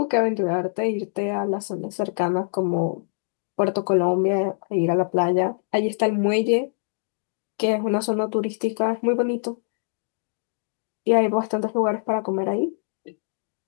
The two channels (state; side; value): silent; right; digital silence